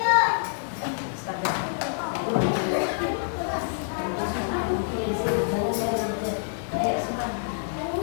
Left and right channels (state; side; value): silent; right; 60 dB below the other